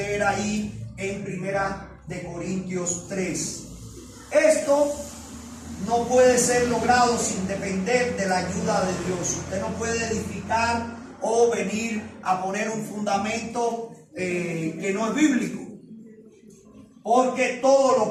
ahí en 1 Corintios 3. Esto no puede ser logrado sin depender de la ayuda de Dios. Usted no puede edificar o venir a poner un fundamento que no es bíblico. Porque todo lo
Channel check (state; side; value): identical; both; correlation 1.00